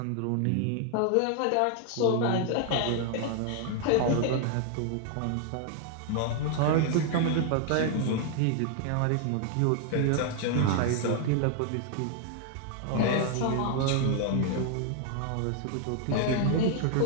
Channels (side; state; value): both; different; correlation 0.00